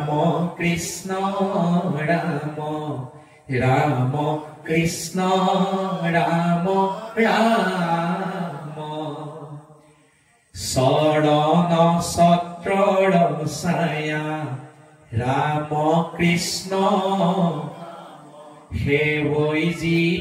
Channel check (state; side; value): identical; both; correlation 1.00